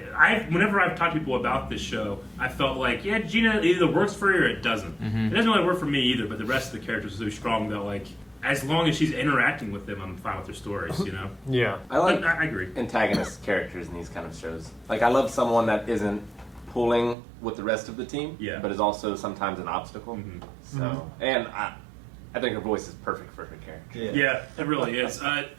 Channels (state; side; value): drops out; left; at 17.2 s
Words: Whenever I've talked to people about this show, I felt like, yeah, Gina either works for you or it doesn't. It doesn't really work for me either, but the rest of the characters are so strong that, like, as long as she's interacting with them, I'm fine with their stories, Yeah. I like But I agree. antagonist characters in these kind of shows. Like, I love someone that isn't pulling with the rest of the team, but is also sometimes an obstacle. So, and I think her voice is perfect for her character. Yeah, it really is.